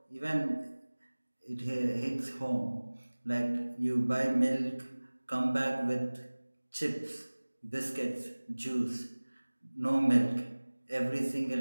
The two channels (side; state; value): both; inverted; correlation -1.00